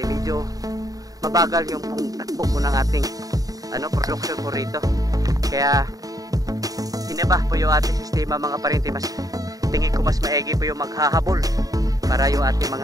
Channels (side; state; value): left; late; 0.18 ms